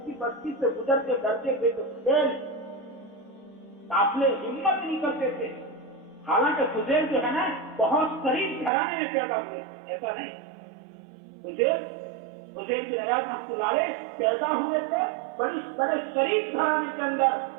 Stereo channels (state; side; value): drops out; left; at 8.7 s